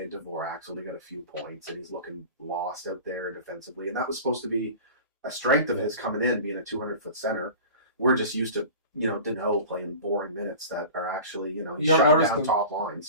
and Dvorak's only got a few points, and he's looking lost out there defensively. And that was supposed to be a strength of his coming in, being a 200-foot center. We're just used to, Deneau playing boring minutes that are actually, he's You haven't shutting noticed down them. top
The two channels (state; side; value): inverted; both; correlation -0.36